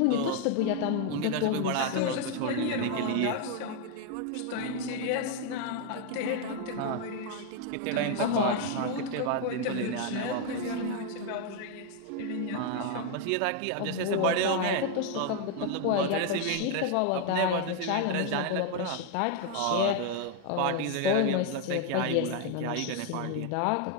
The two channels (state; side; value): different; both; correlation 0.01